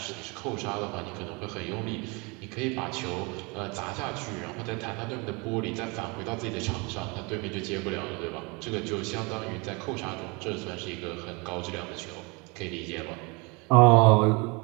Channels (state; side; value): quieter; left; 28.7 dB